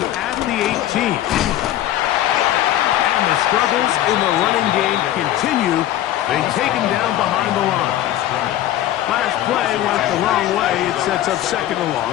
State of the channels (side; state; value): right; quieter; 13.1 dB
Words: at the 18. And the struggles in the running game continue. They take him down behind the line. Last play went the wrong way. It sets up 2nd and